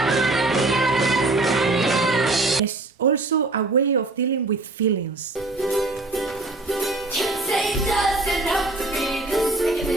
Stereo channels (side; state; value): left; quieter; 3.0 dB